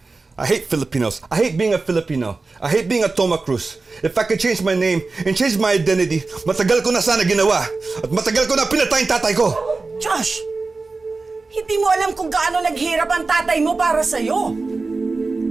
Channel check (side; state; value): left; quieter; 3.8 dB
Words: I hate Filipinos. I hate being a Filipino. I hate being a Toma Cruz. If I could change my name and change my identity, matagal ko na sana ginawa. At matagal ko na pinatay yung tatay ko. Josh! Hindi mo alam kung gaano naghirap ang tatay mo para sa'yo.